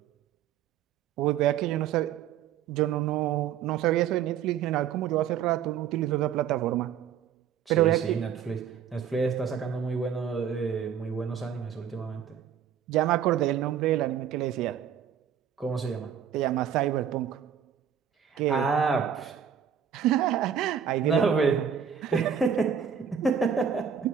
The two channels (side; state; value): left; quieter; 8.4 dB